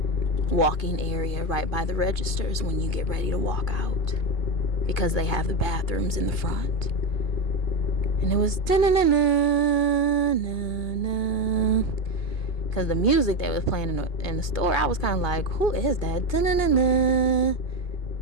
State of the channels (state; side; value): late; right; 2.4 ms